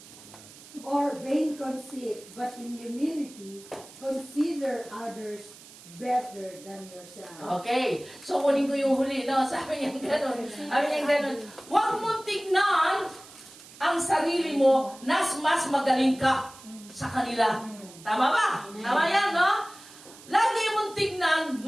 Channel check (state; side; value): noise; right; hiss, 20 dB below the sound